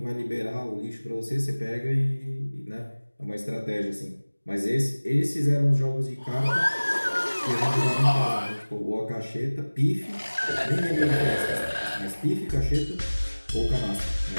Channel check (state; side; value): inverted; both; correlation -1.00